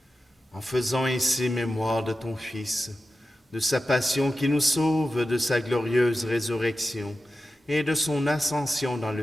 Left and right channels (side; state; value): both; normal; correlation 0.92